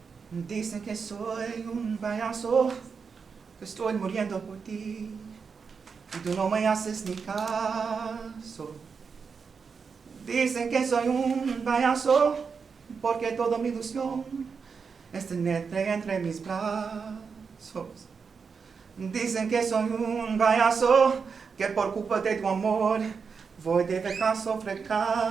Dicen que soy un payaso, que estoy muriendo por ti, y tú no me haces ni caso. Dicen que soy un payaso, porque toda mi ilusión es tenerte entre mis brazos. Dicen que soy un payaso, que por culpa de tu amor voy de fracaso a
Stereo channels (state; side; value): quieter; left; 5.6 dB